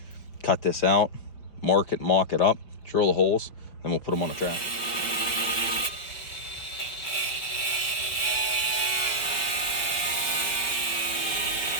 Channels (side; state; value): right; late; 5.0 ms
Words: Cut this out, mark it, mock it up, drill the holes, then we'll put them on the track.